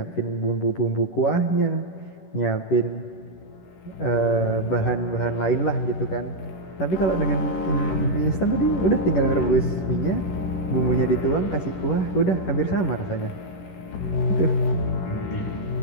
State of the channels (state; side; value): late; right; 11 ms